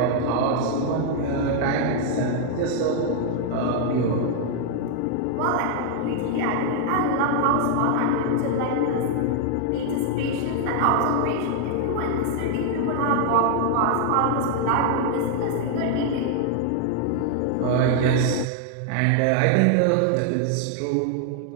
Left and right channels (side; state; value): both; different; correlation 0.00